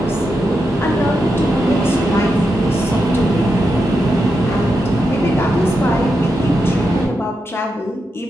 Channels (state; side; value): normal; both; correlation 0.86